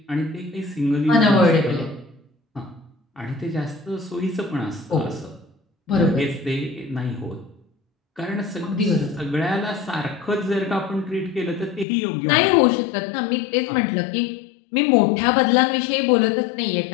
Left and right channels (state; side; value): drops out; right; at 11.9 s